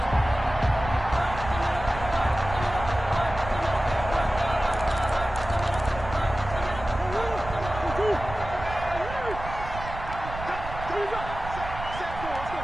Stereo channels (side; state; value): right; noise; rumble, 10 dB below the sound